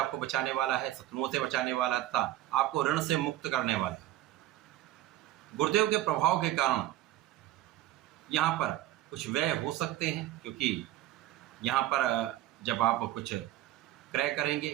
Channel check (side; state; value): left; quieter; 14.4 dB